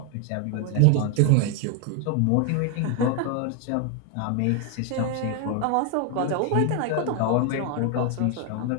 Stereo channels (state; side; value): different; both; correlation 0.01